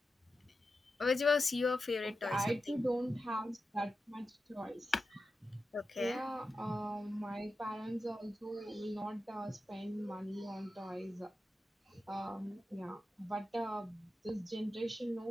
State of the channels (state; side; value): normal; both; correlation 0.91